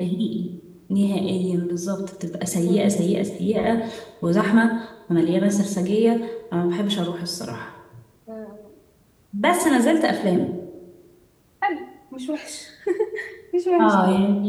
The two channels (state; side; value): identical; both; correlation 1.00